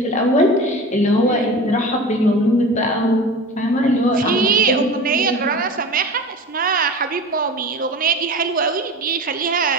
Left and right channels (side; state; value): both; normal; correlation 0.33